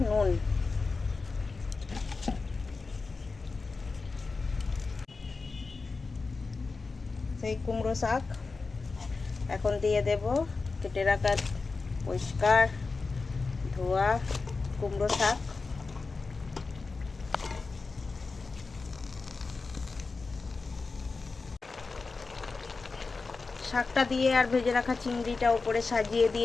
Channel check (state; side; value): quieter; right; 4.1 dB